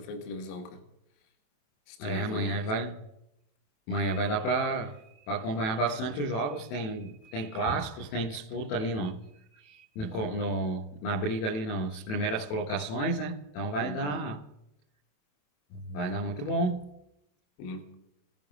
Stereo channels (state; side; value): late; right; 27 ms